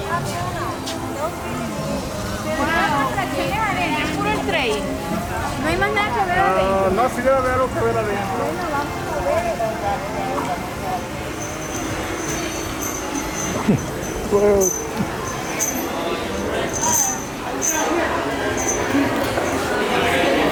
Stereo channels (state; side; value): identical; both; correlation 1.00